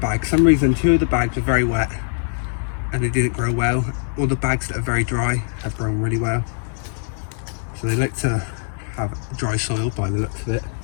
For some reason, 2 of the bags are very wet and they didn't grow well. All the bags that are very dry have grown really well. So they like to have dry soil by the looks of it.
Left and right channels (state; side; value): silent; right; digital silence